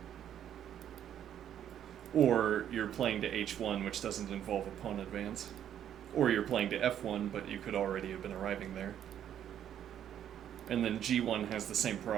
Or you're playing to h1, which doesn't involve a pawn advance. Or you're playing to f1, but you could already have been arriving there. And then g1 has the same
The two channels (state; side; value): quieter; left; 10.1 dB